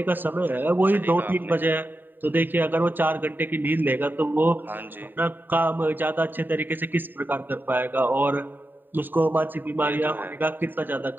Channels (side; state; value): left; late; 0.092 ms